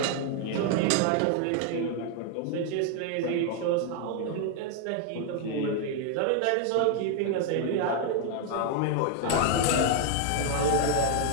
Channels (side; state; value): both; different; correlation 0.00